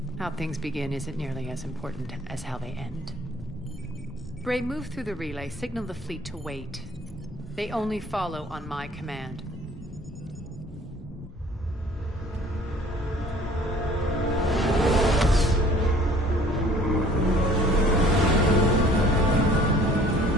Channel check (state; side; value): normal; both; correlation 0.53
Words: How things begin isn't nearly as important as how they end. Gray, move through the relay. Signal the fleet to wait. They only follow on my command.